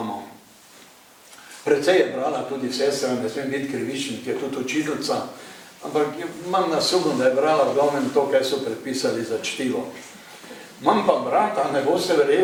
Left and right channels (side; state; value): both; identical; correlation 1.00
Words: Precej je brala tudi sestra, ne smem biti krivičen, ki je tudi učiteljica, ampak imam nasumno, da je brala v glavnem to, kaj so predpisali za čtivo. Imam pa brata, ne boste